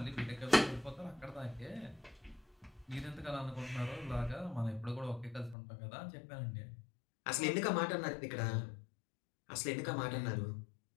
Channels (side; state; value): right; drops out; at 5.6 s